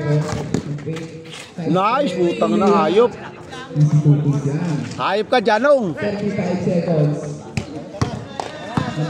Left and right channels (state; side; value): identical; both; correlation 1.00